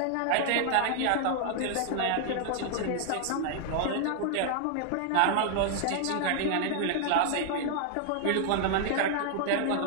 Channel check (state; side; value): different; both; correlation 0.00